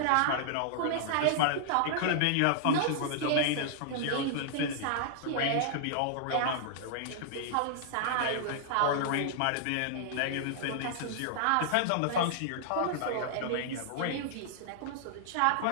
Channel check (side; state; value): both; different; correlation -0.01